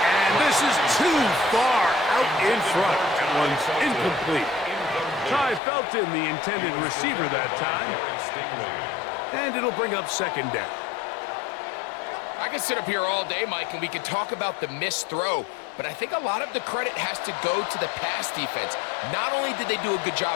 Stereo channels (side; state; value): right; drops out; at 5.6 s